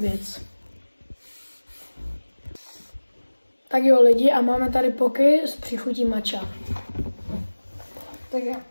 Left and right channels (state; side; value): inverted; both; correlation -1.00